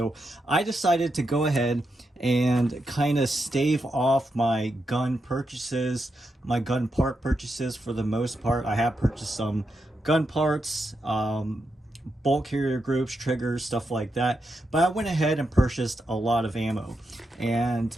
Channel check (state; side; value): normal; both; correlation 0.85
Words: I decided to go ahead and kind of stave off my gun purchases, my gun part purchases for the most part. I have purchased some gun parts, bulk carrier groups, triggers, stuff like that. But I went ahead and purchased a lot of ammo. And